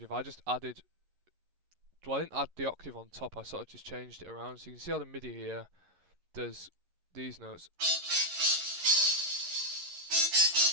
I just added. Well, I didn't add the octave on top. I sort of just changed it around. So you can see how the MIDI here does these notes.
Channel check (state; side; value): late; left; 11 ms